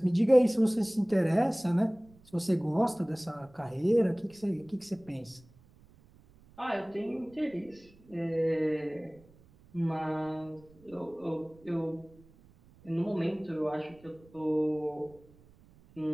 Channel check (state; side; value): noise; right; rumble, 27 dB below the sound